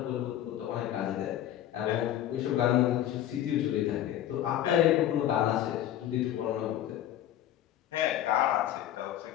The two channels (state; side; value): quieter; right; 12.0 dB